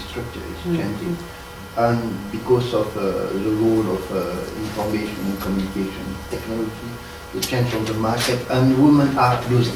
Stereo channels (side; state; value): both; identical; correlation 1.00